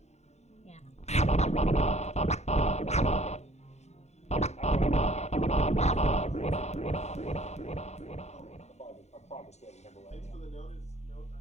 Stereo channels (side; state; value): right; late; 0.32 ms